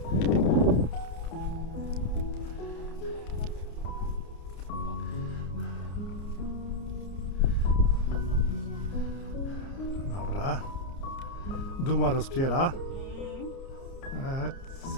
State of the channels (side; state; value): right; late; 30 ms